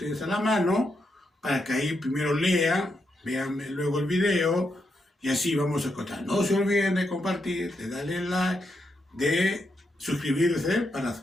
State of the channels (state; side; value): normal; both; correlation 0.82